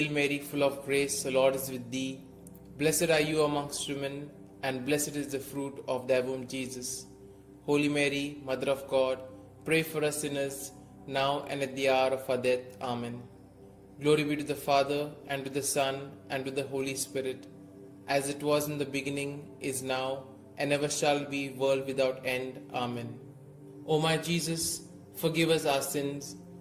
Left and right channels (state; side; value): identical; both; correlation 1.00